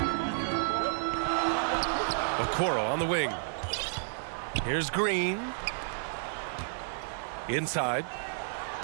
Okoro on the wing. Here's Green. Inside.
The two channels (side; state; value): left; silent; 57 dB below the other